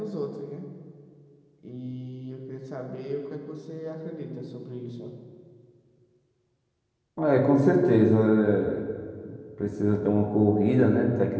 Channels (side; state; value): both; identical; correlation 1.00